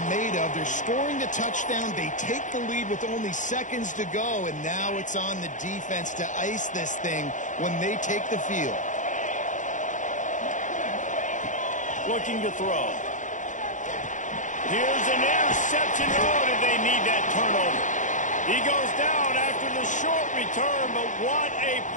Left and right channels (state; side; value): late; right; 0.36 ms